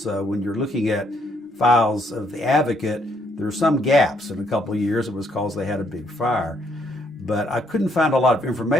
when you're looking at files of the Advocate, there are some gaps in a couple of years. It was because they had a big fire. But I couldn't find a lot of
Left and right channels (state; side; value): normal; both; correlation 0.71